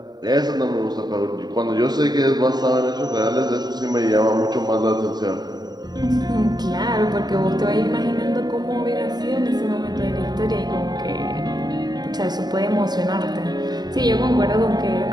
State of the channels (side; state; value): left; late; 0.20 ms